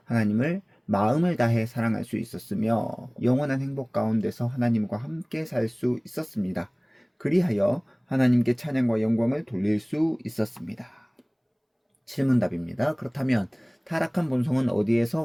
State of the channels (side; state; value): both; identical; correlation 1.00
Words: 하나님을 마음을 다해 사랑할 수 있었으며 영원한 행복 가운데서 하나님과 함께 살 수 있었습니다. 그리하여 하나님께 찬양과 영광을 돌릴 수 있었습니다. 질문답입니다. 그렇다면 타락한 본성은 어디에서